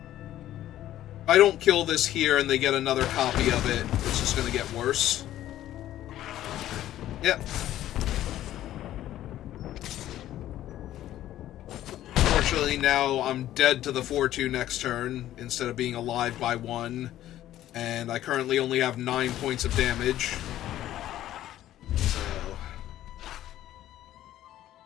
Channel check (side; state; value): right; quieter; 13.1 dB